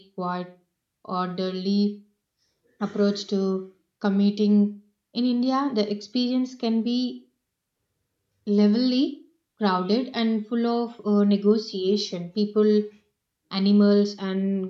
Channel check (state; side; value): identical; both; correlation 1.00